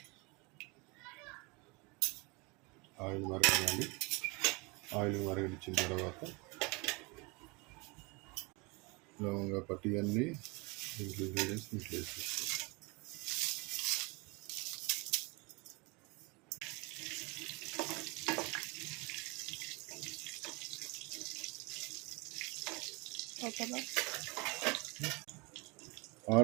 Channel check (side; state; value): left; quieter; 27.6 dB